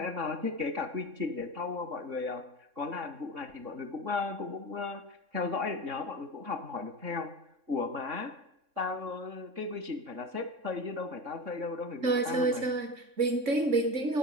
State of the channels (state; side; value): late; left; 3.6 ms